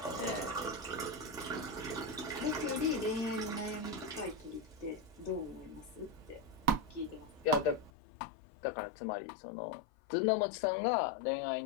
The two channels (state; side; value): drops out; right; at 7.9 s